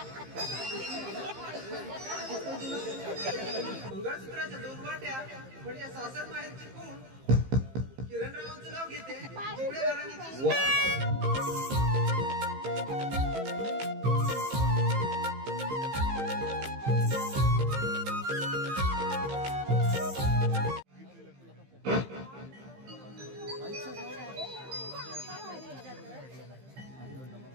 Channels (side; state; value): left; late; 15 ms